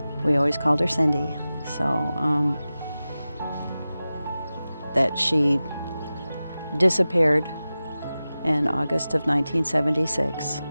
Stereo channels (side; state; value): both; inverted; correlation -0.95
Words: We always called her Cindy. So that she disappeared in August of 1976,